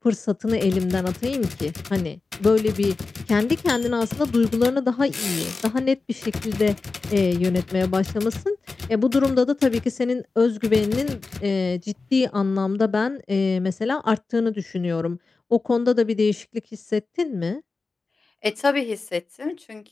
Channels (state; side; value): quieter; right; 4.0 dB